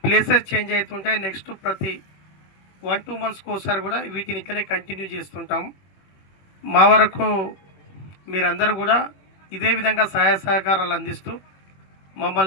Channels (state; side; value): late; right; 21 ms